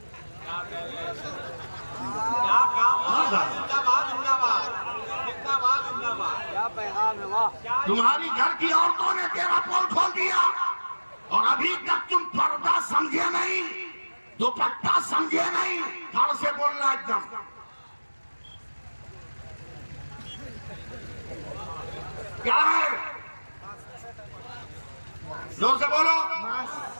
क्या पैगाम है? वाह, तुम्हारी घर की औरतों ने तेरा पोल खोल दिया और अभी तक तुम पर्दा समझे नहीं, दुपट्टा समझे नहीं। धड़ से बोलना एकदम। क्या है? जोर से बोलो।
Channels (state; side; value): inverted; both; correlation -1.00